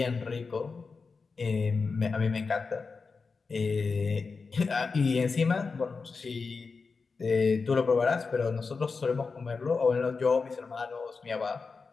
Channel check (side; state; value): right; quieter; 4.6 dB